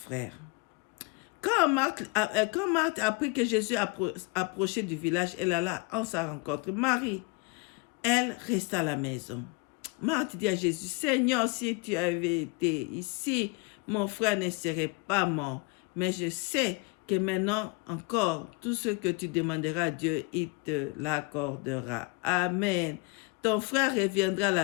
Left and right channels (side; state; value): right; quieter; 26.2 dB